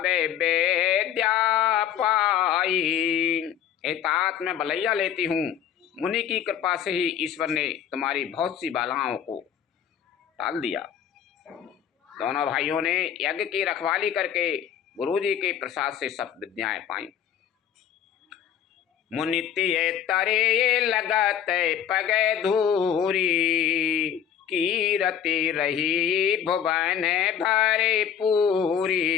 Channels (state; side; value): quieter; right; 8.9 dB